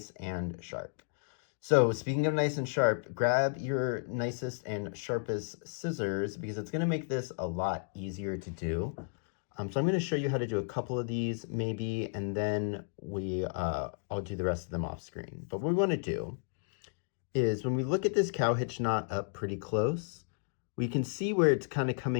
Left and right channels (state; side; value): silent; right; digital silence